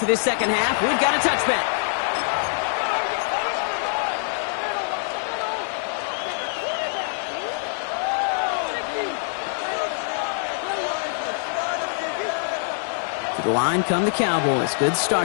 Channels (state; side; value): silent; right; 61 dB below the other